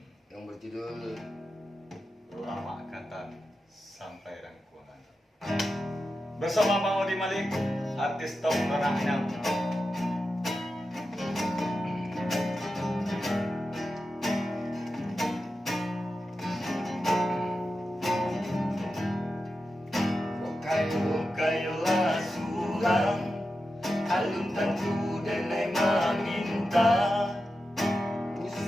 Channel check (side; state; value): both; normal; correlation 0.91